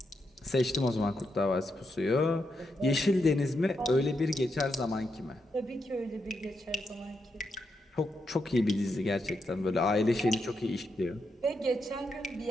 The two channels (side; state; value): both; normal; correlation 0.83